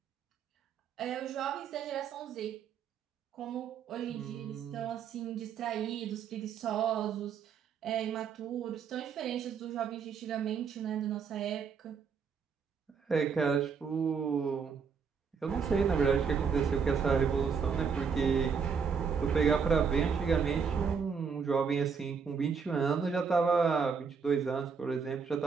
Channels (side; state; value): left; quieter; 6.1 dB